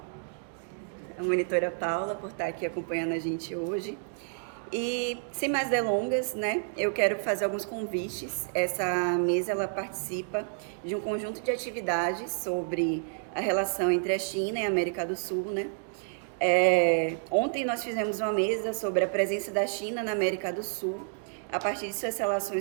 por estar aqui acompanhando a gente hoje. E, sem mais delongas, eu quero fazer alguns convites. Essa mesa ela participa de um conjunto de atividades sobre a relação entre a China e a América do Sul. Ontem nós fizemos uma mesa sobre a presença da China na América do Sul, a partir de suas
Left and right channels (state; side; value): silent; left; digital silence